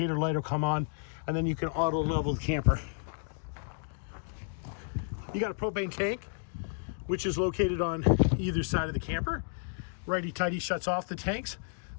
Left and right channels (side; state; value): right; silent; digital silence